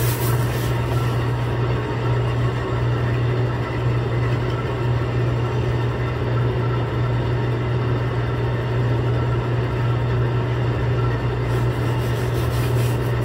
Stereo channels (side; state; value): both; identical; correlation 1.00